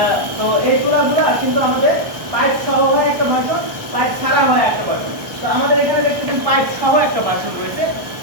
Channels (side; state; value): left; late; 1.3 ms